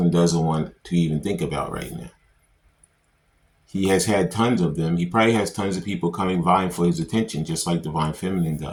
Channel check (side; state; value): both; identical; correlation 1.00